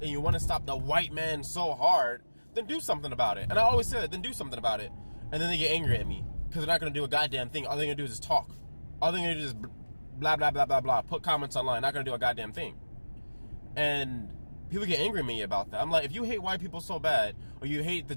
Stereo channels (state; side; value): inverted; both; correlation -1.00